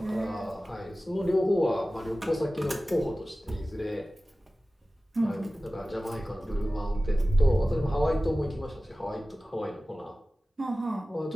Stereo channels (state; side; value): normal; both; correlation 0.96